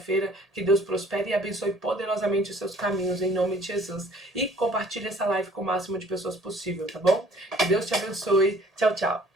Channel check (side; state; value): both; normal; correlation 0.55